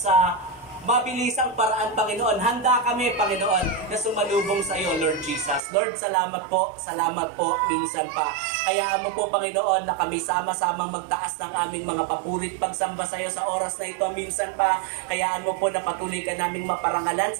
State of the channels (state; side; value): drops out; left; at 5.6 s